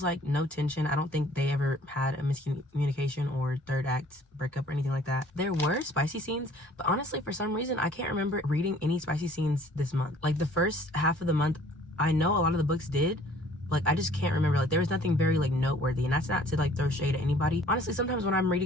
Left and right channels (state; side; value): normal; both; correlation 0.54